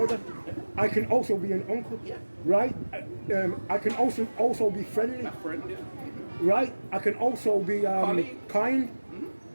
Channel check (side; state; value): both; inverted; correlation -1.00